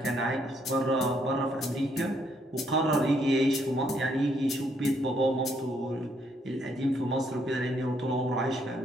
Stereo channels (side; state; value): both; normal; correlation 0.71